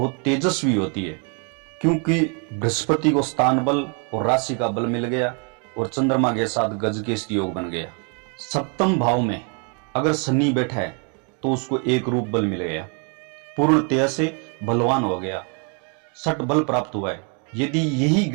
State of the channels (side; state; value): left; quieter; 37.8 dB